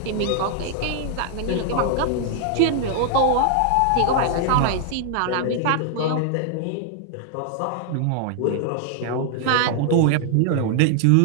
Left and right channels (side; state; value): both; different; correlation 0.00